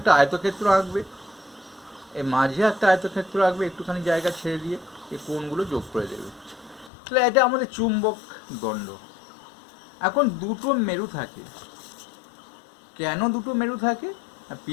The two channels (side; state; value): right; drops out; at 6.9 s